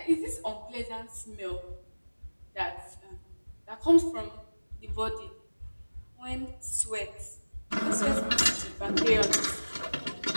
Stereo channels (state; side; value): inverted; both; correlation -1.00